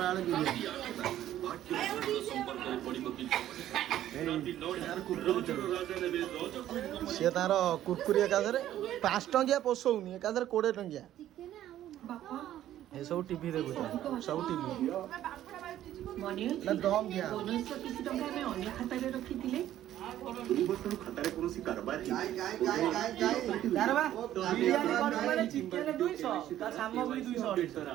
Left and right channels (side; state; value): left; quieter; 12.5 dB